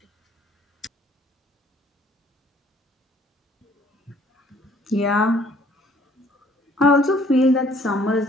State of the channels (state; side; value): normal; both; correlation 0.59